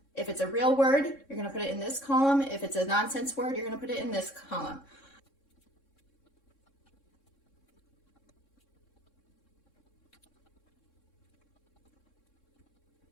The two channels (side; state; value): right; late; 3.6 ms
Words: if it's a real word, you're going to put it in this column. If it's a nonsense word, you're going to put it in this column.